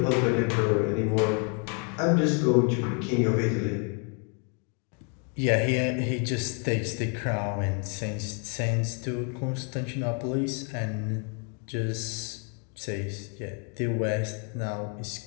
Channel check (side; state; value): right; quieter; 38.1 dB